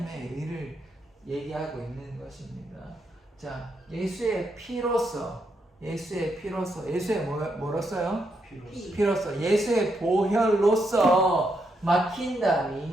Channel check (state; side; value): normal; both; correlation 0.80